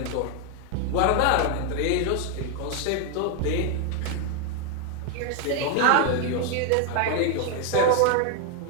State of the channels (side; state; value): both; different; correlation 0.00